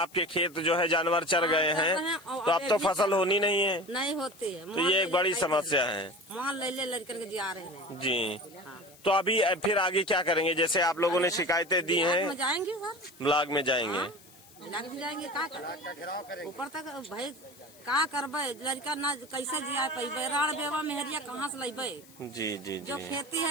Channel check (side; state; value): left; noise; hiss, 24 dB below the sound